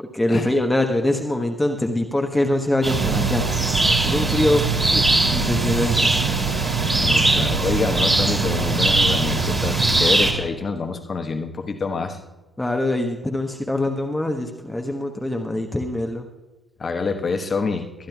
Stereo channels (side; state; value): both; normal; correlation 0.78